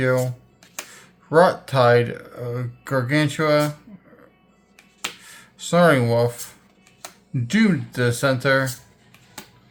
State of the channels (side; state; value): both; identical; correlation 1.00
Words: Rot Tide, Gargantua, Snoring Wolf, Doomed Dissenter,